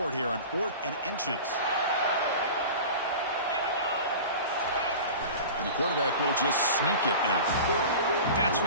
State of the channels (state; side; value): inverted; both; correlation -0.35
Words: it here on 4th and inches. And the quarterback will just sneak it now. That's